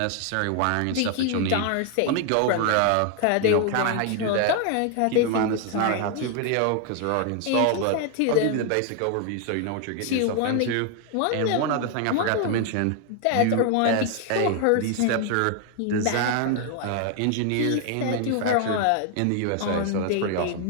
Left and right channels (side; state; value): both; different; correlation 0.00